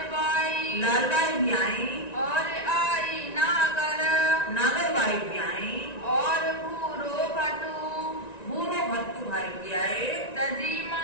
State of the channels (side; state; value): right; late; 1.9 ms